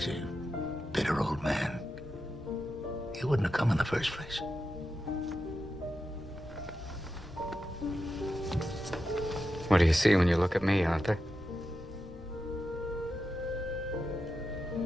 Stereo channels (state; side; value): normal; both; correlation 0.89